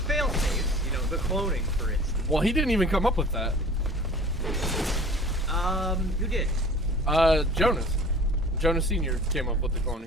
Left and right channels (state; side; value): normal; both; correlation 0.44